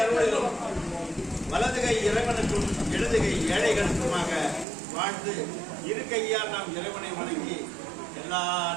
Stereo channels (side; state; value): left; drops out; at 4.7 s